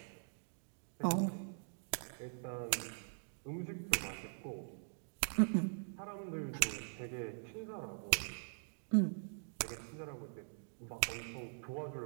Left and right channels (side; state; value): left; silent; digital silence